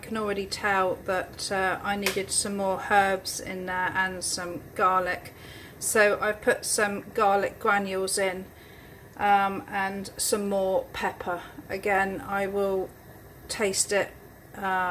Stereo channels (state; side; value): identical; both; correlation 1.00